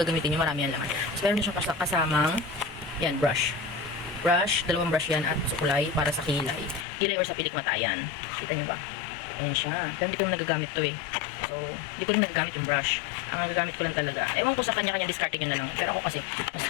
gagamitin nyo, marami yan laman. So, meron din siyang kasamang, yan, brush. Brush, dalawang brush yan at sukulay para sa kilay. Kilay or sa pilikmatayan. Kita nyo ba? Ayan siya. Pero hindi ko nagagamit to eh. So, hindi ko rin nagagamit yung brush. Ang nagagamit ko lang talaga. Ewan ko sa kanya-kanya discarding yun na lang. Pero ako kasi, mas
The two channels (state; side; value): drops out; right; at 6.9 s